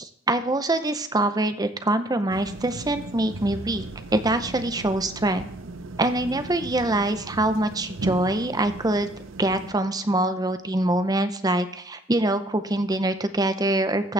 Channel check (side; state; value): both; normal; correlation 0.61